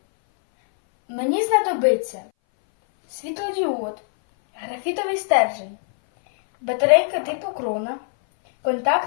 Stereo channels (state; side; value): silent; right; 61 dB below the other